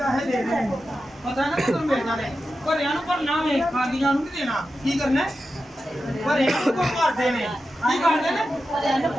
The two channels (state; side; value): normal; both; correlation 0.91